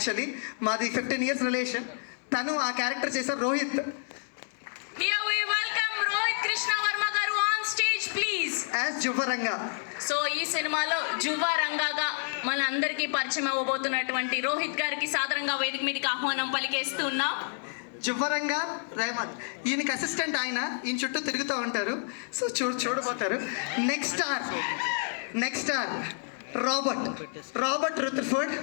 మాది 15 years రిలేషన్. తను ఆ క్యారెక్టర్ చేశారు Rohit. Here we welcome Rohit Krishna Varma garu on stage please. As జువ్వరంగా. సో ఈ సినిమాలో జువ్వ రంగాగా మన అందరికీ పరిచయం అవ్వబోతున్నటువంటి రోహిత్ గారికి సాదరంగా వేదిక మీదకి ఆహ్వానం పలికేస్తున్నాం. జువ్వరంగా రేవంత్, ఈయనకి అసిస్టెంట్. ఆయన ఈయన చుట్టూ తిరుగుతూ ఉంటారు. సో చూడబోతారు. Next R Robert Rutherford.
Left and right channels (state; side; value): silent; right; 58 dB below the other